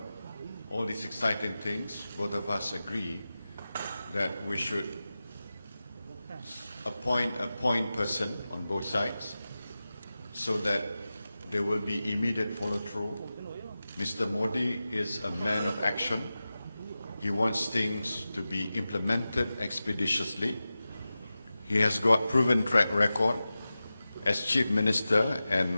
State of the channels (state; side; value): inverted; both; correlation -0.94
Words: all these exciting things, both of us agree that we should appoint a point person on both sides, so that there will be immediate follow-through. Mr. Modi is a man of action. He wants things to be implemented expeditiously. He has got proven track record as Chief Minister